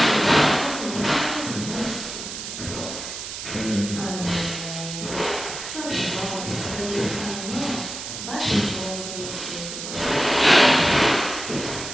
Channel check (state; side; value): noise; right; hiss, 8 dB below the sound